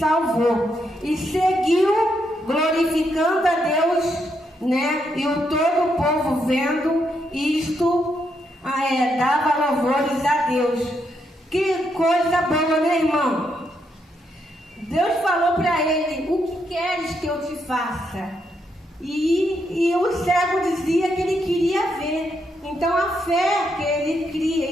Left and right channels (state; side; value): normal; both; correlation 0.79